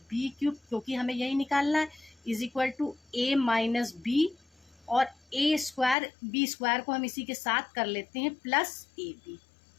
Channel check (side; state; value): right; drops out; at 6.0 s